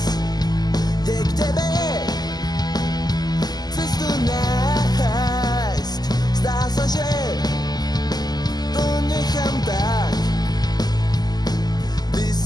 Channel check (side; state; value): right; late; 0.20 ms